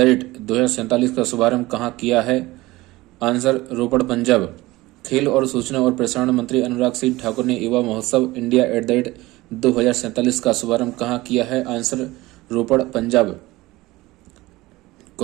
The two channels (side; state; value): left; quieter; 19.4 dB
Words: 2047 का शुभारंभ कहाँ किया है? आंसर, रोपड़, पंजाब। खेल और सूचना और प्रसारण मंत्री अनुराग सिंह ठाकुर ने युवा महोत्सव इंडिया @ 2047 का शुभारंभ कहाँ किया है? आंसर, रोपड़, पंजाब।